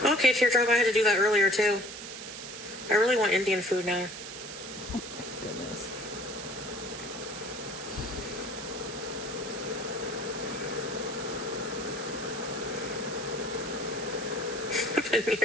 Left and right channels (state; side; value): noise; right; hiss, 10 dB below the sound